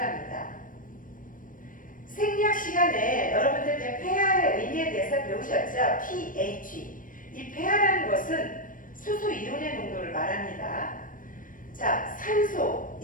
생리학 시간에 여러분들 폐하의 의미에 대해서 배우셨죠? pH. 이 폐하라는 것은 수소이온의 농도를 말합니다. 자, 산소,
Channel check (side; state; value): right; late; 0.39 ms